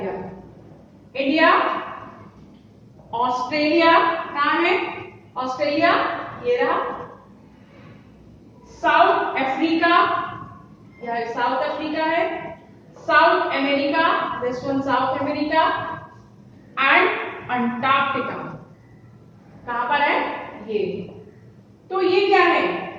इंडिया, ऑस्ट्रेलिया, कहां है ऑस्ट्रेलिया? ये रहा। साउथ अफ्रीका, यह साउथ अफ्रीका है। South America, this one South America. And Antarctica, कहां पर है? ये। तो ये क्या है?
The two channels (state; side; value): identical; both; correlation 1.00